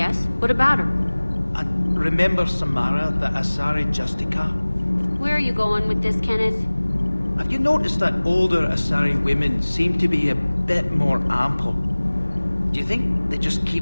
What about her? And remember Samara, the Asari Justica? Where are you going with this, Kenneth? Have you noticed that older Asari women seem to be a bit more ample? Do you think they just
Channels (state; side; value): inverted; both; correlation -1.00